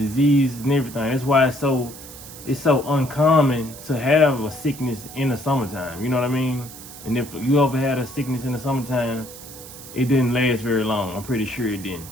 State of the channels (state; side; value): noise; right; hiss, 15 dB below the sound